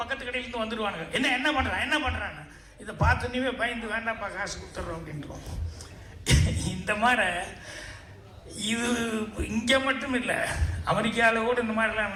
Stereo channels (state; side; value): identical; both; correlation 1.00